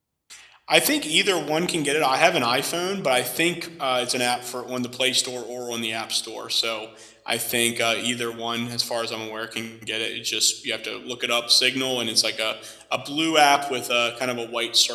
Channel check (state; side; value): identical; both; correlation 1.00